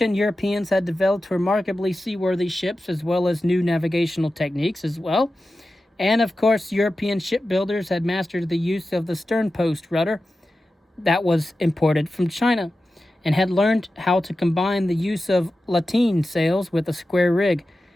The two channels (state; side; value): normal; both; correlation 0.93